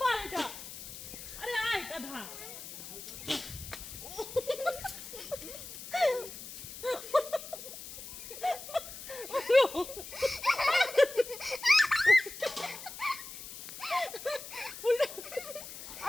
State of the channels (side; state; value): left; noise; hiss, 12 dB below the sound